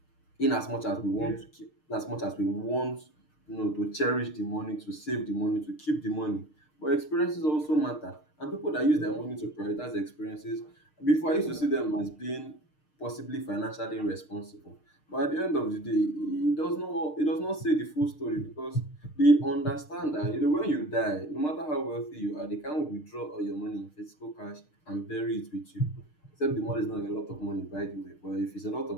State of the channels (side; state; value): right; late; 6.6 ms